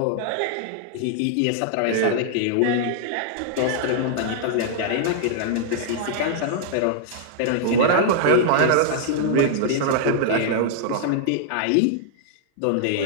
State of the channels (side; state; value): both; different; correlation -0.01